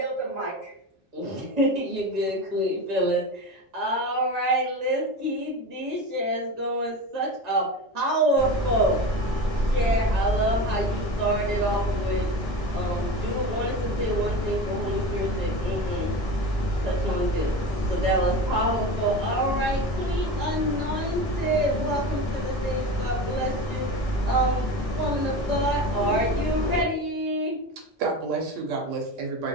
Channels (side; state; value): both; normal; correlation 0.28